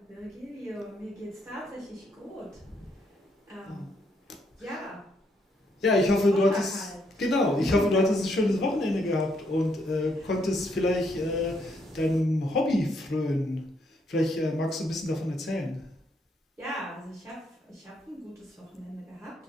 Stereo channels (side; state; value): both; normal; correlation 0.74